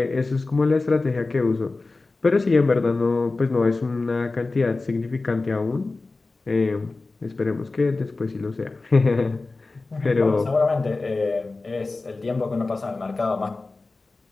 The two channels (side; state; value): right; quieter; 3.5 dB